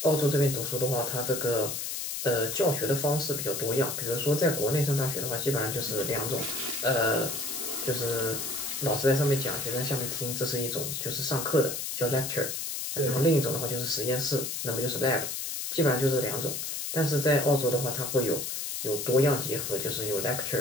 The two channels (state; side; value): noise; left; hiss, 4 dB below the sound